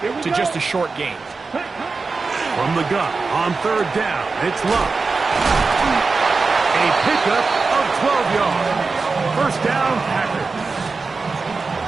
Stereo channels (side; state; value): left; quieter; 4.2 dB